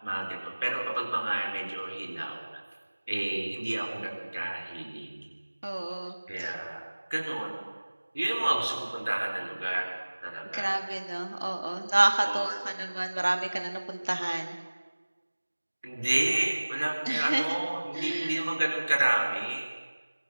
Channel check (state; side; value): inverted; both; correlation -1.00